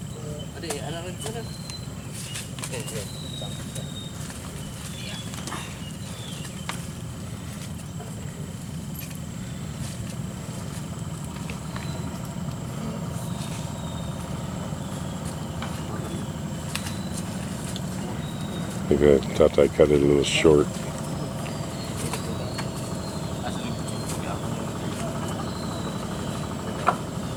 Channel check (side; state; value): both; identical; correlation 1.00